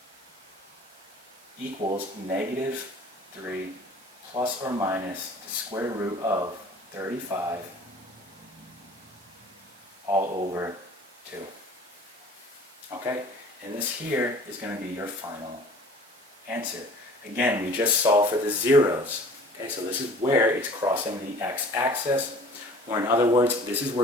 equals negative 3 plus or minus the square root of 35 all over 2. Okay? And this here is going to be your final answer. Again, we just solved for the zeros. Okay, so this is where it's crossing the x-axis, or in other words, this is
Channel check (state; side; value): normal; both; correlation 0.47